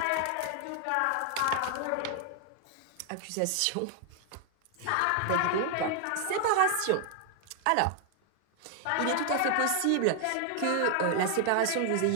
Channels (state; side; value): different; both; correlation 0.00